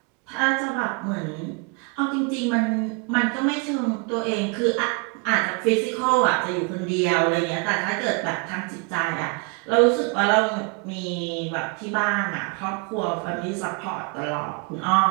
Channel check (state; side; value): quieter; left; 32.2 dB